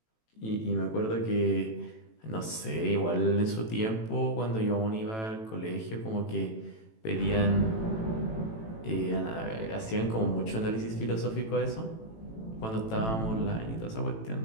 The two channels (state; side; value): late; right; 18 ms